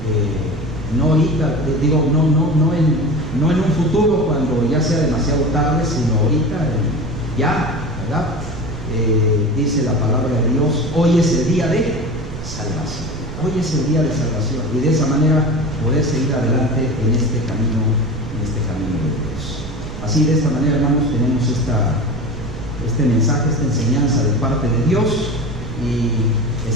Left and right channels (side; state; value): right; noise; rumble, 10 dB below the sound